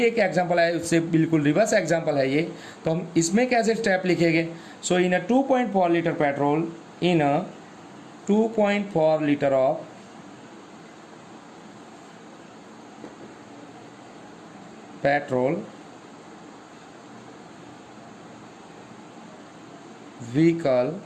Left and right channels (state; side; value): identical; both; correlation 1.00